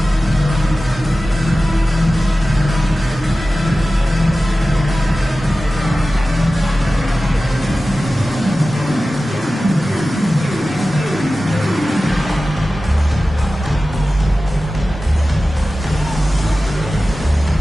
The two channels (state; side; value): normal; both; correlation 0.95